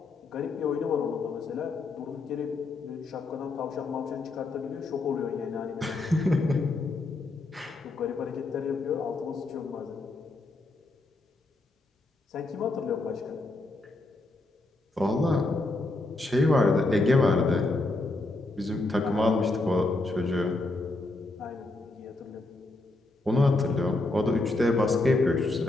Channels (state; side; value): quieter; right; 3.0 dB